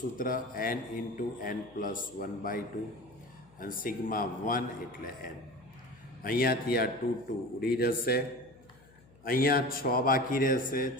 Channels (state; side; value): noise; left; hum, 26 dB below the sound